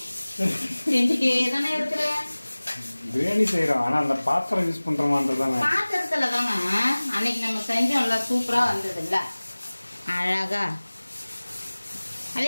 செஞ்சுட்டே தானே இருக்கிற. பிரியாணி செய்யறோம், ஆனா அந்த பாத்திரம் யூஸ் பண்றோமான்றதானே. பாத்திரத்துல தாங்க அன்னைக்கு நம்ம செஞ்சோம்ல, சூப்பரா வந்தது இல்ல, அழகா. அதே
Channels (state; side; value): inverted; both; correlation -1.00